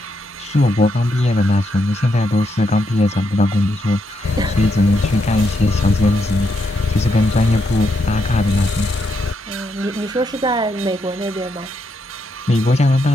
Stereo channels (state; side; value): normal; both; correlation 0.80